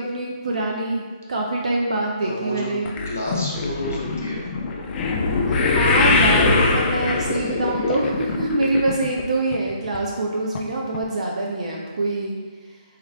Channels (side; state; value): both; inverted; correlation -0.56